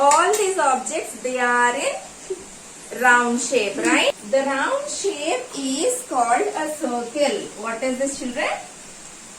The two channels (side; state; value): both; identical; correlation 1.00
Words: these objects, they are in round shape, right? The round shape is called a circle. What is this children?